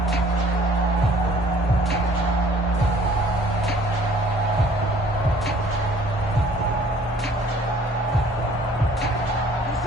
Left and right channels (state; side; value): normal; both; correlation 0.55